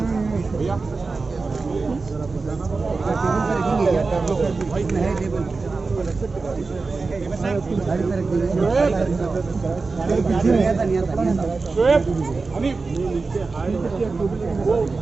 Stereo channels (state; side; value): quieter; left; 4.0 dB